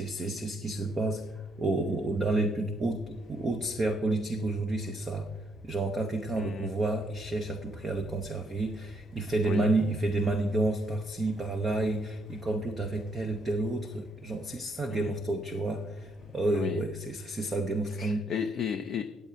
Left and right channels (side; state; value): both; normal; correlation 0.73